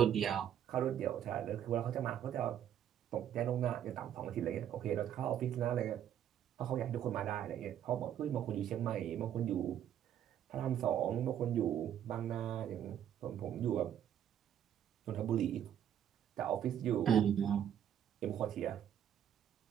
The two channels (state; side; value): quieter; left; 10.0 dB